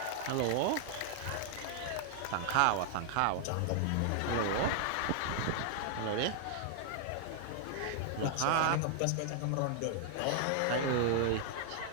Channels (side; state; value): both; different; correlation 0.00